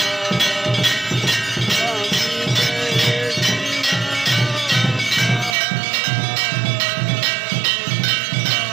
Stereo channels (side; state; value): left; drops out; at 5.6 s